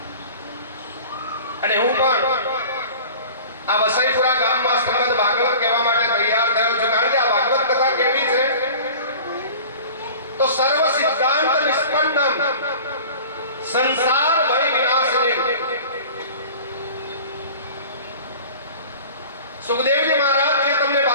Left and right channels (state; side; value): inverted; both; correlation -0.41